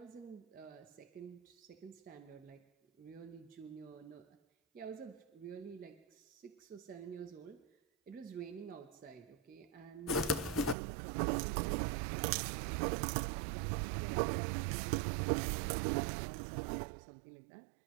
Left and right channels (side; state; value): left; drops out; at 10.8 s